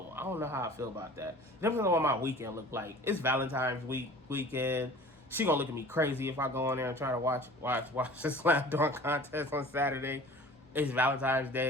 I don't know how I feel about that. Depends on what my weekend look like. It's Valentine's weekend. She gonna look at me crazy if I go in there and try to watch the slam dunk contest on Saturday. It's Valentine's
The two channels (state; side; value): normal; both; correlation 0.44